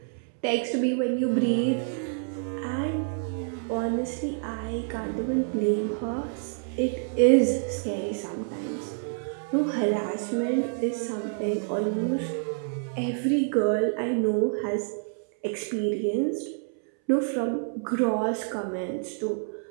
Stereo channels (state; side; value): silent; left; 60 dB below the other